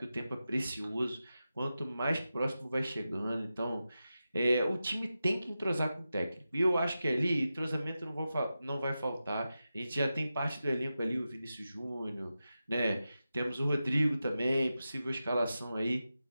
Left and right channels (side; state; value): both; inverted; correlation -0.92